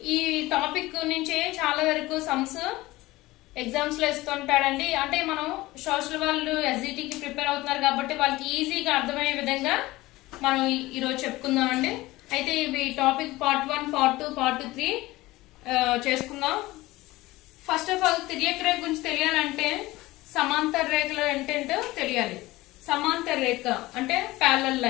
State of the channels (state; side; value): quieter; right; 19.0 dB